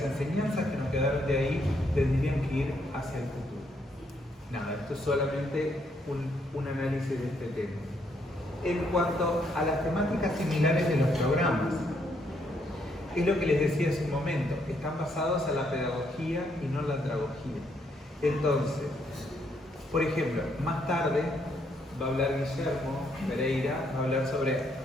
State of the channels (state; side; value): normal; both; correlation 0.73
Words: enseñanzas que nos quedaron de ahí tendrían que ir hacia el futuro. Nada, esto es solamente un análisis de este tema. En cuanto a las temáticas similares de los programas, es lo que les decía hace un momento, están basados en la pedagogía y no en la andragogía. Entonces, por ejemplo, más tarde va a hablar Guillermo Pereira, va a hablar sobre